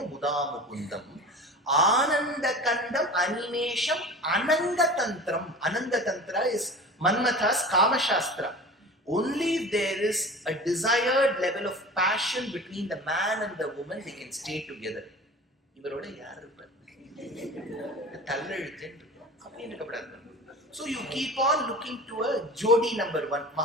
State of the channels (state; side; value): normal; both; correlation 0.37